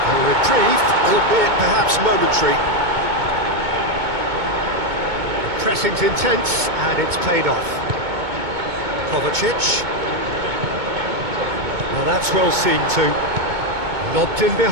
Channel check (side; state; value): left; late; 2.2 ms